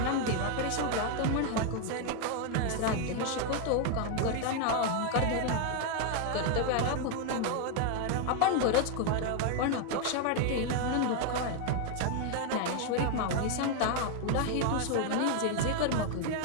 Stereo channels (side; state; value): both; different; correlation 0.01